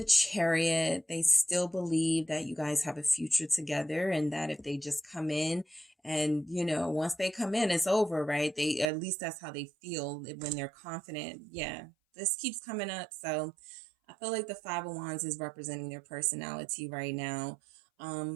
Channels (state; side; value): drops out; left; at 8.9 s